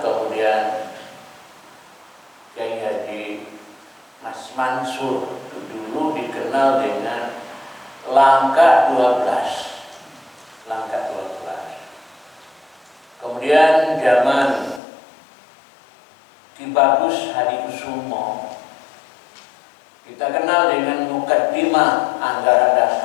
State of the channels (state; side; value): drops out; right; at 14.8 s